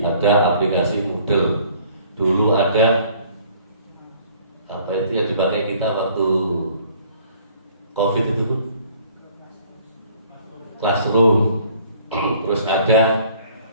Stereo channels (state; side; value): inverted; both; correlation -0.57